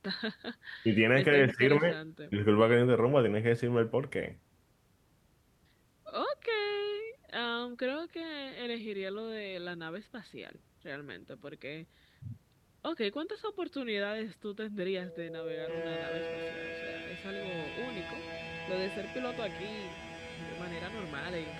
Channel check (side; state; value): both; identical; correlation 1.00